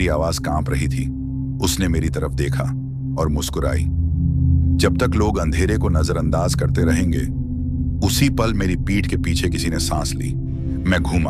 आवाज कांप रही थी। उसने मेरी तरफ देखा और मुस्कुराई। जब तक लोग अंधेरे को नजरअंदाज करते रहेंगे। उसी पल मेरी पीठ के पीछे किसी ने सांस ली। मैं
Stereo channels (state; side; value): identical; both; correlation 1.00